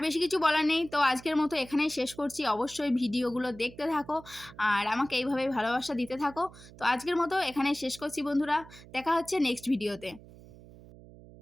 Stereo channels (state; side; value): noise; right; hum, 20 dB below the sound